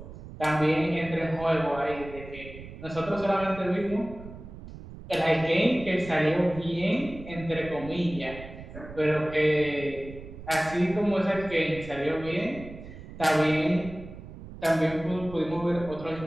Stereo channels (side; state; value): right; noise; rumble, 14 dB below the sound